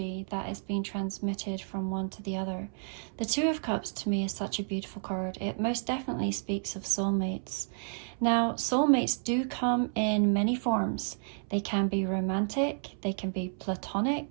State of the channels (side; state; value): left; silent; 57 dB below the other